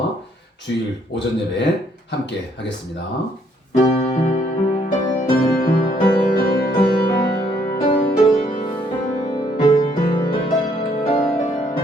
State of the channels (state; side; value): normal; both; correlation 0.68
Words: 주일 오전 예배 함께 하겠습니다.